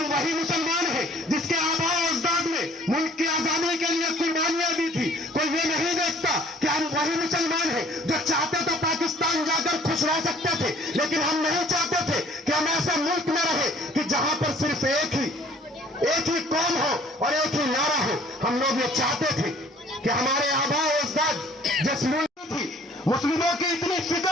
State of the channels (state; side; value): normal; both; correlation 0.56